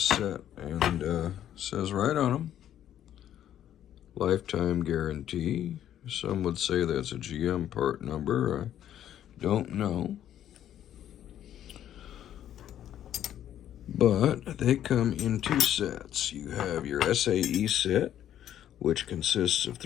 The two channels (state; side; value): quieter; right; 11.0 dB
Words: and says right on them, lifetime guarantee. Some would say that's a GM part number. I don't know. But they come in 2 sets. You have your SAE set, which consists of